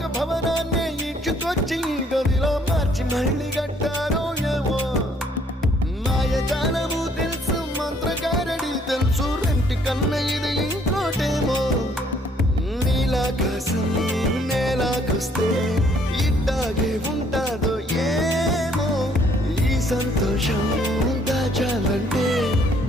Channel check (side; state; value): both; normal; correlation 0.64